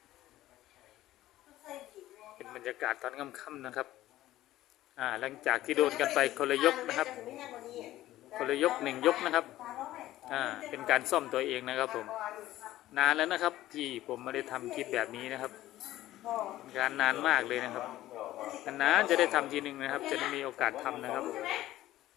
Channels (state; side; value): quieter; right; 14.9 dB